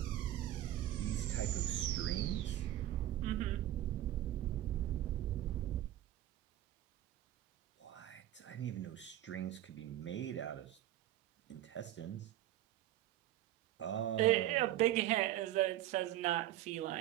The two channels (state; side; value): quieter; left; 13.4 dB